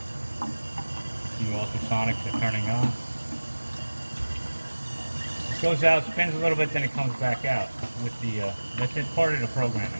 You see ultrasonics are turning on. It goes out, spins a little bit, then it comes back out with the, that's it, part of the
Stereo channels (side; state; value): both; inverted; correlation -1.00